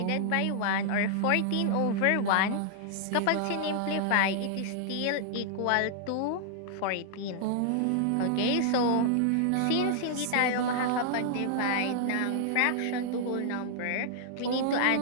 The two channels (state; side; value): different; both; correlation -0.01